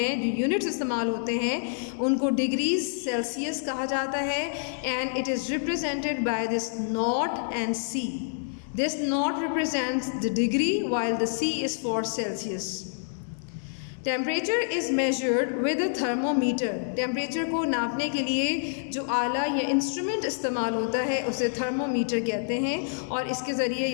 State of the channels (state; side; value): silent; right; 60 dB below the other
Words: जो यूनिट्स इस्तेमाल होते हैं, उनको डिग्रीज सेल्सियस कहा जाता है. And it is represented by this nought and C. This nought represents the degree while the C is for Celsius. Temperature is measured with a thermometer. Temperature को नापने के लिए जो आला या इंस्ट्रूमेंट इस्तेमाल होता है उसे थर्मोमीटर कहते हैं, और इसके ज़रिए